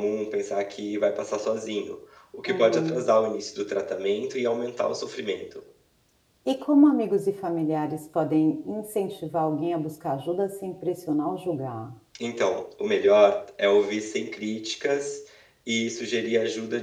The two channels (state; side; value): identical; both; correlation 1.00